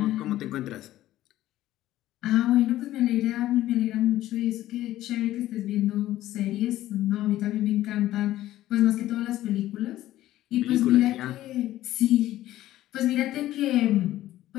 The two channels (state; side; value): quieter; right; 14.4 dB